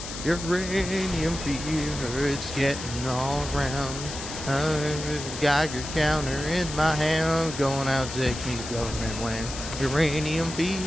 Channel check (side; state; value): left; noise; hiss, 9 dB below the sound